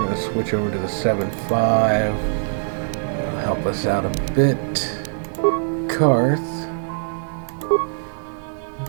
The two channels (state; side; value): silent; left; 62 dB below the other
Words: to switch over to the 7.5. It'll help us out a bit. Karth. What